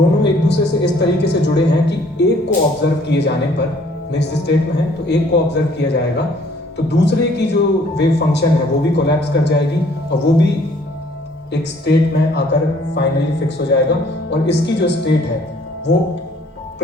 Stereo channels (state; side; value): normal; both; correlation 0.59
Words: एक दूसरे से इस तरीके से जुड़े हैं कि एक को ऑब्जर्व किए जाने पर, मिक्स्ड स्टेट में है तो एक को ऑब्जर्व किया जाएगा तो दूसरे की जो वेव फंक्शन है वो भी कोलैप्स कर जाएगी और वो भी एक स्टेट में आकर फाइनली फिक्स हो जाएगा। और इसकी जो स्टेट है वो